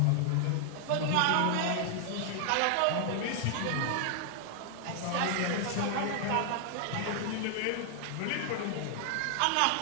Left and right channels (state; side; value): different; both; correlation 0.00